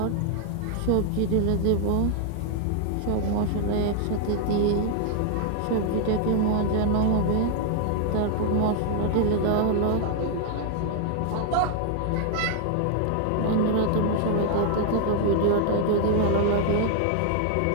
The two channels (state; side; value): different; both; correlation 0.00